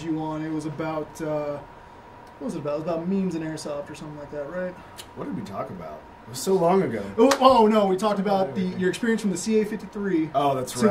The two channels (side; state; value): both; identical; correlation 1.00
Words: you on, it was about, what was it about? It was about memes and airsoft or something like that, right? What did we talk about? It was so long ago. Oh no, we talked about your experience from the CA-53 Oh, that's to